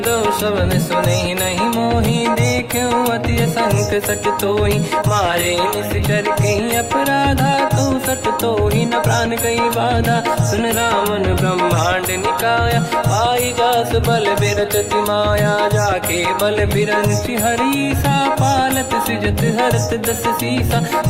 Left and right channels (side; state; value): both; identical; correlation 1.00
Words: दो शवन सुने नहीं मोही देखे अति संक सट तोही मारे निश्चर कहीं अपराधा तो सट तोही न प्राण कहीं बाधा सुन रावण ब्रह्मांड निकाया पाई जास बल बिरचति माया जाके बल बिरंचि हरीसा पालत सिजत हरत दस सीसा